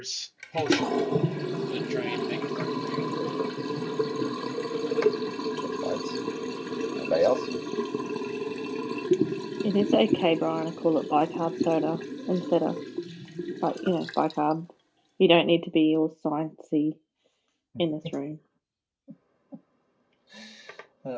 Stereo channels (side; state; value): both; identical; correlation 1.00